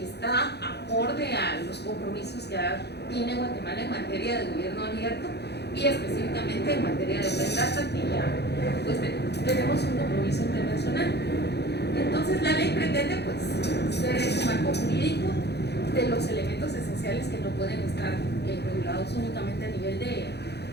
está acorde a los compromisos que tiene Guatemala en materia de gobierno abierto y específicamente en materia de Open Data, que ya pues tenemos un compromiso internacional. Entonces la ley pretende pues ser ese marco jurídico de los elementos esenciales que no pueden estar regulados únicamente a nivel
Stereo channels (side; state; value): right; late; 0.48 ms